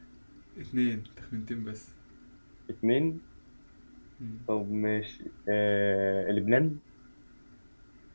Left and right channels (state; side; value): inverted; both; correlation -1.00